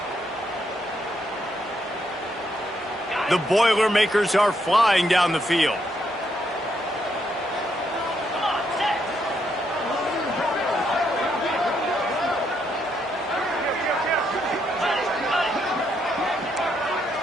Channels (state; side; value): normal; both; correlation 0.76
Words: The Boilermakers are flying down the field.